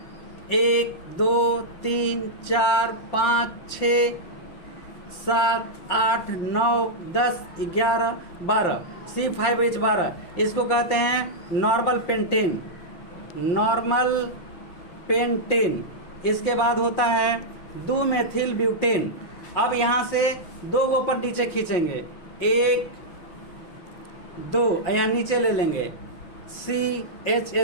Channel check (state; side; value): late; right; 5.7 ms